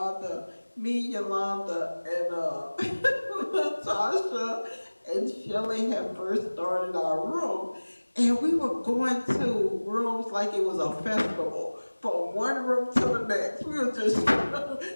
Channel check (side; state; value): both; inverted; correlation -1.00